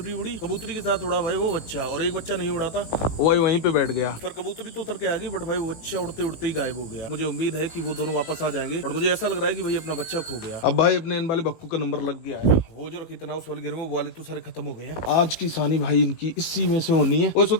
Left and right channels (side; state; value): right; late; 19 ms